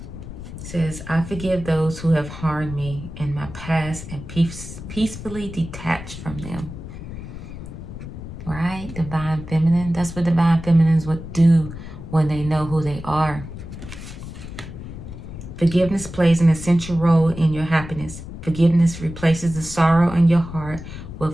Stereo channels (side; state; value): left; noise; rumble, 11 dB below the sound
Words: says, I forgive those who have harmed me in my past and peacefully detach from them. Right? Divine Feminine. That's what Divine Feminines would do when they know who they are. Forgiveness plays an essential role in your happiness. Forgiveness replaces the sorrow in your heart